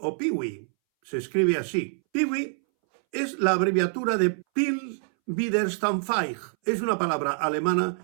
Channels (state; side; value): silent; left; 61 dB below the other